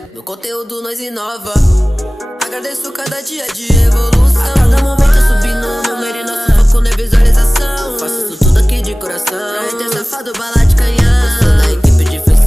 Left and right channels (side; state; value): both; normal; correlation 0.98